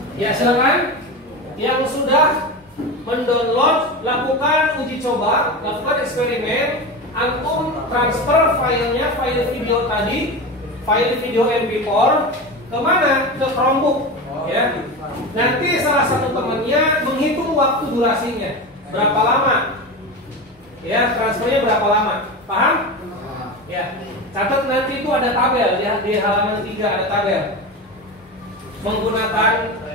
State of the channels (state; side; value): normal; both; correlation 0.23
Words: Ya, silakan yang sudah mendownload, lakukan uji coba, lakukan eksperimen. Antum transfer filenya, file video tadi, file video MP4 kemana? Ke Chromebook, ya. Nanti salah satu temannya menghitung waktu durasinya berapa lama, ya, transfernya berapa lama, paham? Ya, catat nanti itu ada tabel, ya, di halaman 3 ada tabel. Menggunakan